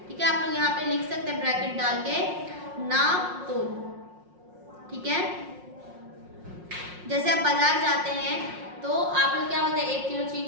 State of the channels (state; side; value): late; left; 5.6 ms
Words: ठीक है, आप लोग यहाँ पे लिख सकते हैं ब्रैकेट डाल के, नाप तोल, ठीक है। जैसे आप बाजार जाते हैं तो आप लोग क्या बोलते हैं, 1 किलो